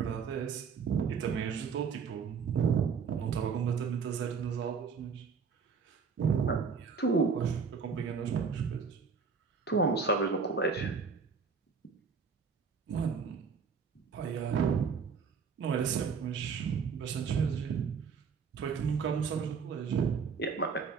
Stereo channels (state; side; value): quieter; left; 5.7 dB